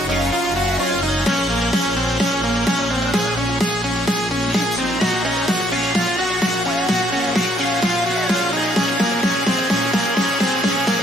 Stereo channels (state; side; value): normal; both; correlation 0.68